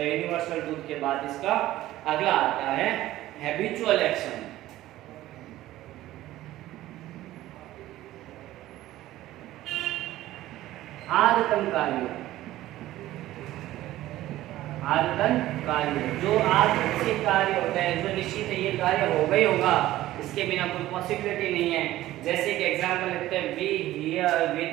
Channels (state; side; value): quieter; left; 15.3 dB